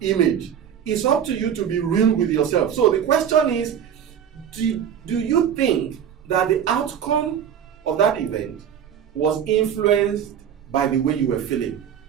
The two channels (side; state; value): left; quieter; 8.8 dB